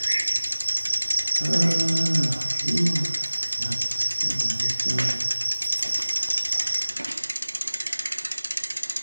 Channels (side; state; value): both; inverted; correlation -1.00